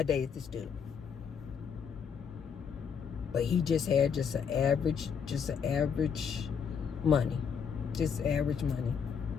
dated this dude. But he just had just an average money. Just average money.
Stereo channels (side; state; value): right; quieter; 6.8 dB